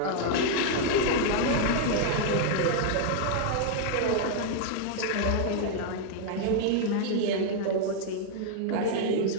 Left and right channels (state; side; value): different; both; correlation 0.00